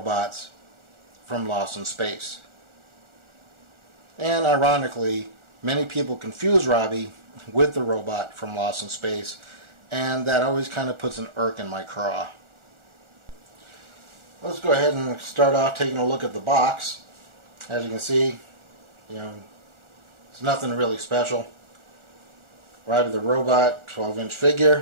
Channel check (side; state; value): left; late; 1.4 ms